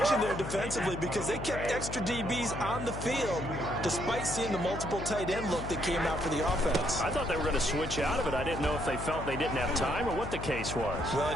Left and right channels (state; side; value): noise; left; hum, 7 dB below the sound